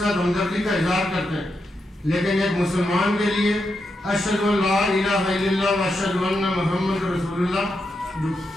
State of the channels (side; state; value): both; normal; correlation 0.85